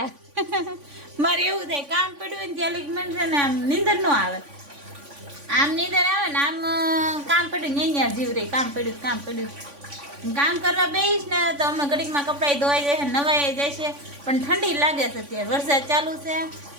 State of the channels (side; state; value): left; late; 3.5 ms